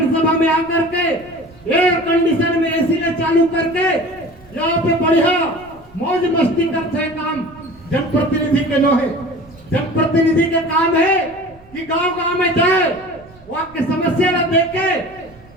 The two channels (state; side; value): noise; right; rumble, 25 dB below the sound